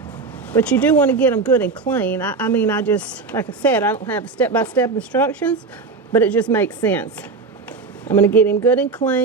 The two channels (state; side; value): quieter; left; 4.3 dB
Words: But you do want to get them good and clean. I mean, I just, like I said, I don't have step-by-step instructions, but it just makes sense. I'm going to get him good and